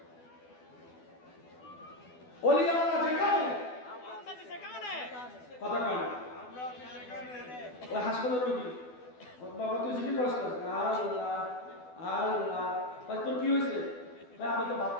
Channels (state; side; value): late; right; 12 ms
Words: ওলি আল্লাহ যেখানে কথা কয় না, ওই হাসপাতালের রোগী, বাবা তুই জিজ্ঞেস করিস না, আল্লাহ আল্লাহ ভাই তোর কি হয়েছে? ভাই আমি তো ভাত